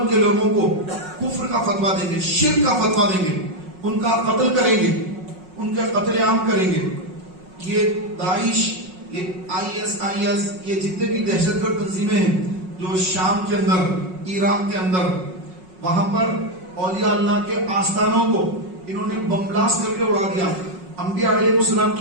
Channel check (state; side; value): late; left; 5.5 ms